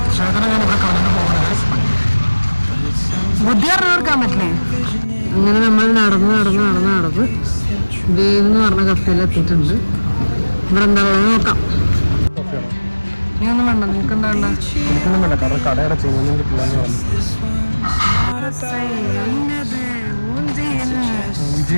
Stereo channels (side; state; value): both; inverted; correlation -1.00